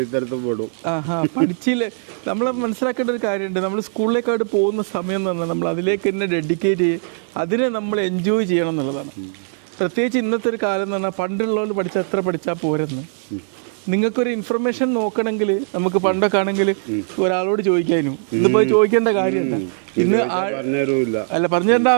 പഠിച്ചില്ലേ? നമ്മൾ മനസ്സിലാക്കേണ്ട ഒരു കാര്യമുണ്ട്. നമ്മൾ സ്കൂളിലേക്കായിട്ട് പോകുന്ന സമയം എന്ന് പറഞ്ഞാൽ നമ്മൾ അതിലേക്ക് തന്നെ ഡെഡിക്കേറ്റ് ചെയ്യും, അതിനെ നമ്മൾ എൻജോയ് ചെയ്യണം എന്നുള്ളതാണ്. പ്രത്യേകിച്ച് ഇന്നത്തെ ഒരു കാലം എന്ന് പറഞ്ഞാൽ പണ്ടുള്ളവർ പഠിച്ചാൽ എത്ര പഠിച്ചാൽ പോരെന്ന്. നിങ്ങൾക്കൊരു ഇൻഫർമേഷൻ നോക്കണമെങ്കിൽ നമുക്ക് പണ്ടൊക്കെ ആണെങ്കിൽ ഒരാളോട് ചോദിക്കാനും ഇന്നിപ്പോൾ ചോദിക്കേണ്ട കാര്യമല്ല. ഇന്ന് അല്ല പറഞ്ഞു തരേണ്ട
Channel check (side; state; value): left; silent; 62 dB below the other